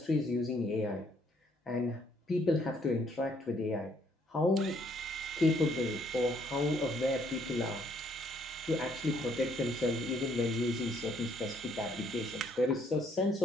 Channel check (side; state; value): both; normal; correlation 0.67